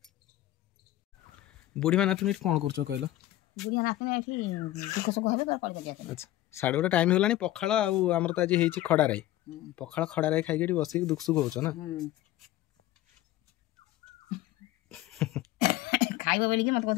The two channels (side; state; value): right; quieter; 15.0 dB